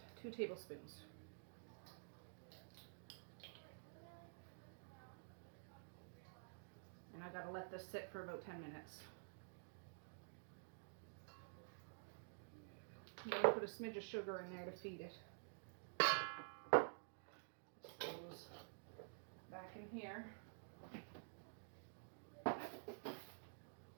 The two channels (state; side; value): silent; left; digital silence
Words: 2 tablespoons. And I gotta let this sit for about 10 minutes. I'm gonna put a smidge of sugar in there to feed it. This goes back in here.